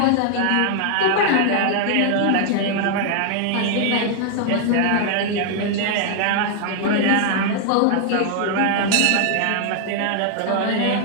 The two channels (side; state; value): both; different; correlation 0.00